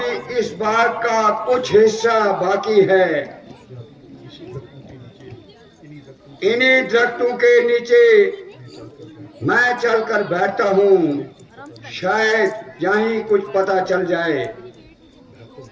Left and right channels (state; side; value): identical; both; correlation 1.00